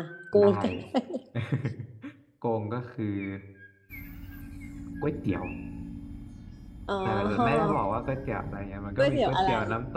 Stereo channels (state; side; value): identical; both; correlation 1.00